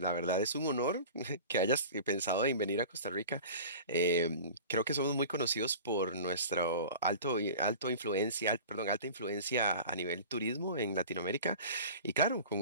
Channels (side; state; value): both; inverted; correlation -0.39